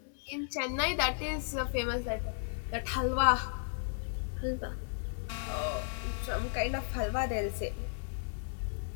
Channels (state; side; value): silent; right; digital silence